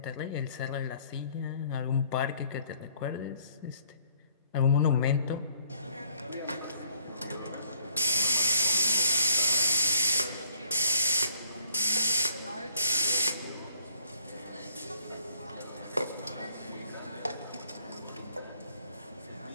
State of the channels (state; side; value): inverted; both; correlation -0.64